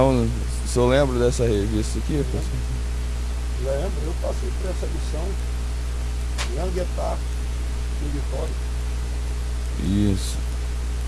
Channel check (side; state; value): both; identical; correlation 1.00